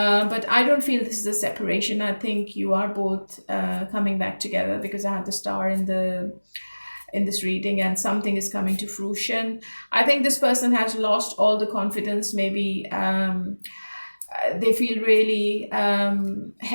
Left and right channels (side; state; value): both; inverted; correlation -1.00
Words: I don't feel this is a separation. I think you are both coming back together, because I have the star in this reading, and something is coming to fruition. I think this person has lost all the confidence. Maybe they feel really